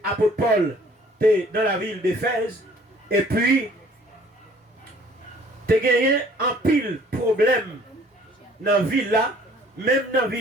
l'apôtre Paul était dans la ville d'Éphèse, et puis, tu as gagné un pile problème dans la ville là, même dans la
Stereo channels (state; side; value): normal; both; correlation 0.56